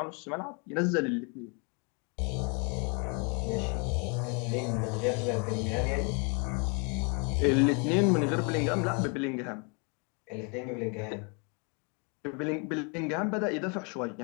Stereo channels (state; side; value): quieter; right; 34.1 dB